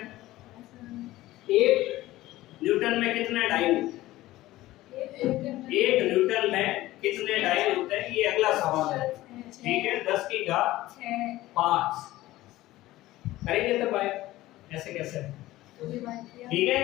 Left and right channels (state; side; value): quieter; right; 16.7 dB